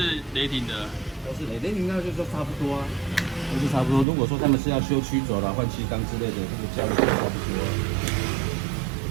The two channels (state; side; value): drops out; left; at 4.0 s